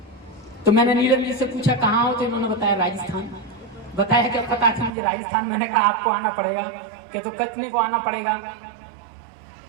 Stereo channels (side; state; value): left; drops out; at 4.9 s